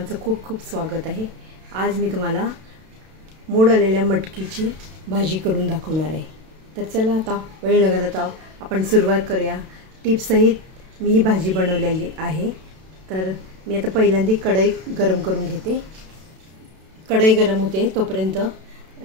खूप खूप स्वागत आहे. आज मी तुम्हाला मोड आलेल्या मटकीची भाजी करून दाखवणार आहे. तर चला आता वेळ न घालवता आपण सुरुवात करूया. टिप्ससहित मी ही भाजी बनवलेली आहे. तर मी आता पहिल्यांदा कढई गरम करून घेते. कढई गरम होते तोपर्यंत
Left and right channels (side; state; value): left; late; 32 ms